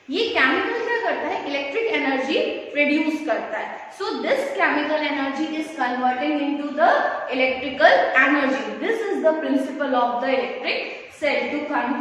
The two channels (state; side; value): identical; both; correlation 1.00